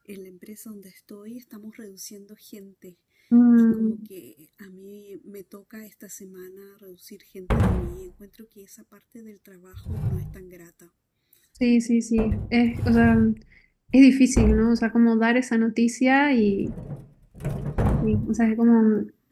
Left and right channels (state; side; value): identical; both; correlation 1.00